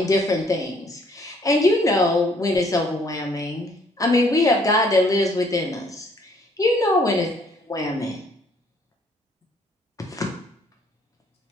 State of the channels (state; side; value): normal; both; correlation 0.63